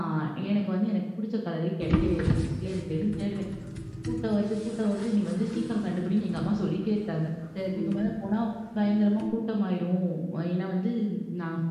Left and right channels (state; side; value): identical; both; correlation 1.00